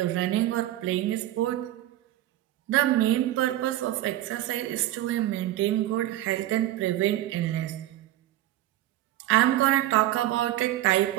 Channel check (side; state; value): left; quieter; 14.4 dB